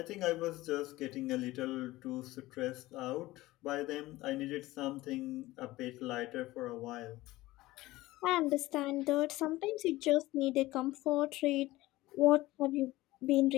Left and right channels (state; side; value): quieter; right; 18.2 dB